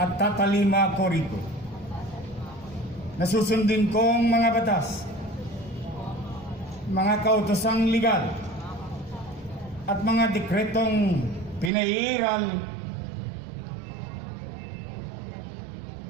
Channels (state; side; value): drops out; left; at 11.7 s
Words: tatalima ko rito. Nasusundin kong mga batas, mga kautosang legal at mga dekretong pinairal